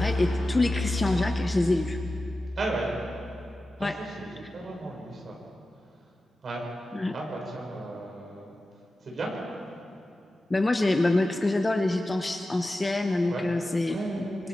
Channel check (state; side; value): normal; both; correlation 0.94